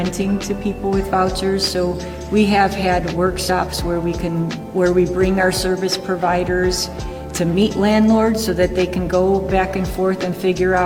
to people with vouchers. So we have had workshops where we bring our service providers to meet landlords so that they can go back and forth and figure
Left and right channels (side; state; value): both; identical; correlation 1.00